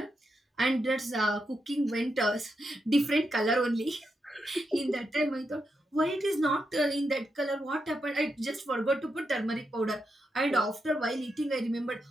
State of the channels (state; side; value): normal; both; correlation 0.84